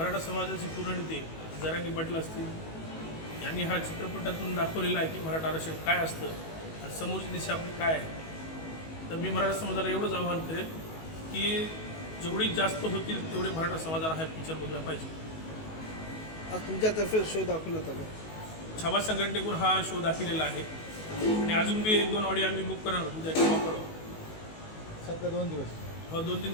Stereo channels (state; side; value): late; right; 19 ms